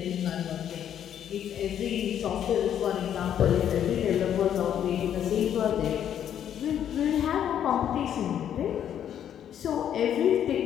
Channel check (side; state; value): right; quieter; 9.8 dB